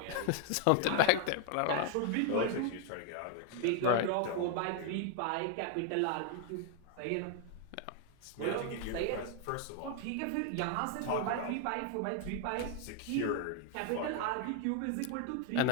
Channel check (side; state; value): both; different; correlation 0.00